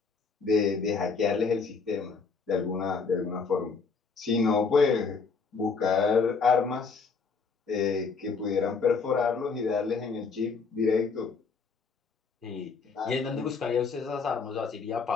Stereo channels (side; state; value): right; quieter; 4.9 dB